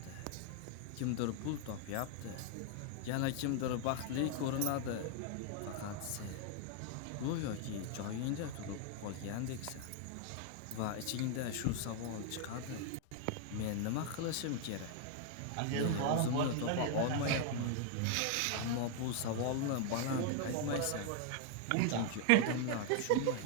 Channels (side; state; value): both; different; correlation 0.00